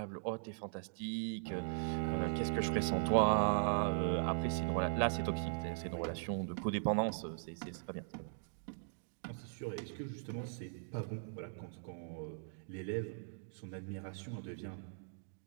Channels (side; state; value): left; silent; digital silence